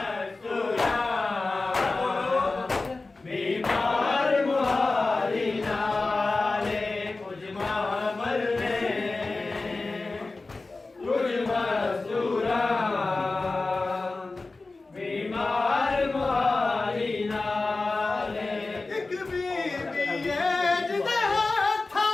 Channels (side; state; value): right; quieter; 3.5 dB